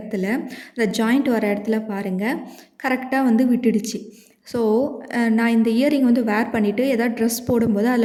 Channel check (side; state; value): both; identical; correlation 1.00